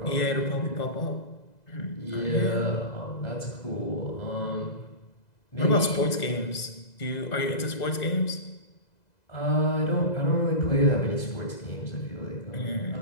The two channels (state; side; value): late; right; 2.0 ms